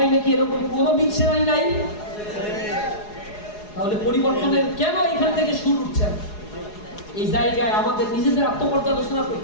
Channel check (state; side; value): late; right; 4.8 ms